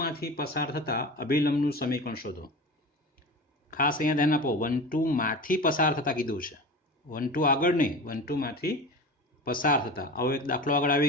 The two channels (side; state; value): both; normal; correlation 0.32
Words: માંથી પસાર થતા અભિલંબનું સમીકરણ શોધો. ખાસ અહીંયા ધ્યાન આપો, 1 2 માંથી પસાર થતા કીધું છે, 1 2 આગળ નહીં, 1 2 માંથી પસાર થતા. આવો એક દાખલો આગળ